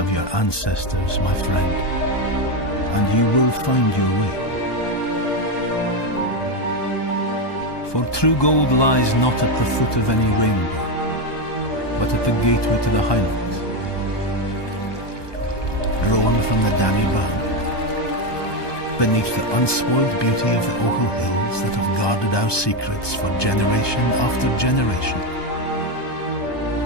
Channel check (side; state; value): right; late; 1.2 ms